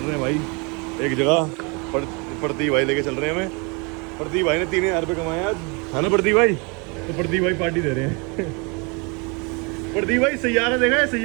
हैं भाई एक जगह। प्रदीप भाई लेके चल रहे हैं हमें। प्रदीप भाई ने 3000 रुपये कमाए आज, है ना प्रदीप भाई। तो प्रदीप भाई पार्टी दे रहे हैं। प्रदीप भाई सैयारा देखा है,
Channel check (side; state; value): left; quieter; 31.2 dB